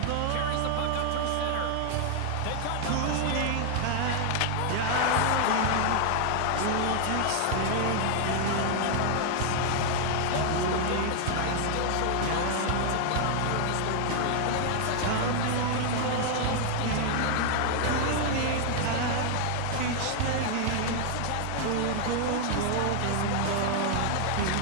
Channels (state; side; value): different; both; correlation 0.00